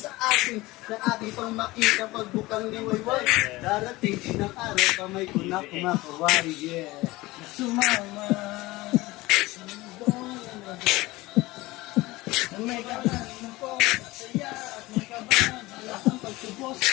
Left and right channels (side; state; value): right; quieter; 20.0 dB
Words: akin, na aking pang makita pagbukang liwayway. Darating din ang araw, kamay ko na kumakawari, yeah. Sumama sa mundong na may kalahin ko, saya at may kabahan, ang pagtubos